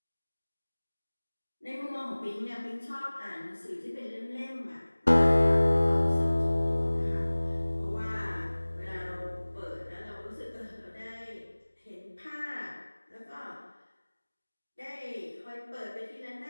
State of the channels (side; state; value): both; inverted; correlation -1.00